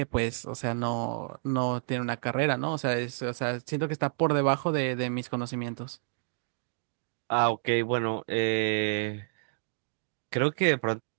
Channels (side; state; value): left; silent; digital silence